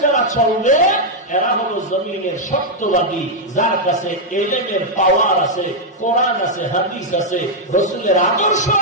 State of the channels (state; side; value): normal; both; correlation -0.02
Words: যারা চলবে এরা হলো জমিনের সত্যবাদী, যার কাছে এলেমের পাওয়ার আছে, কোরআন আছে, হাদিস আছে, রাসূলের আদর্শ